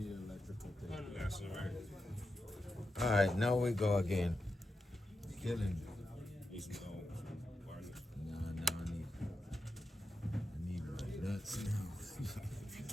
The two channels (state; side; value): normal; both; correlation 0.87